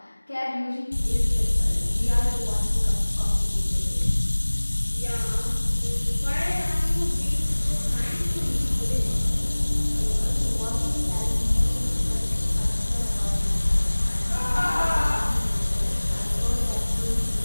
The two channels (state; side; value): inverted; both; correlation -1.00